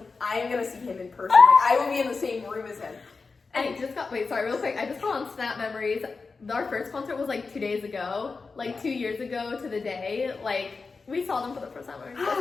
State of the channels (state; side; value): quieter; right; 4.4 dB